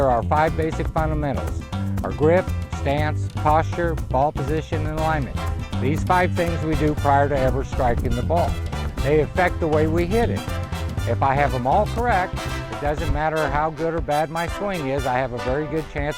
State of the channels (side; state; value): both; identical; correlation 1.00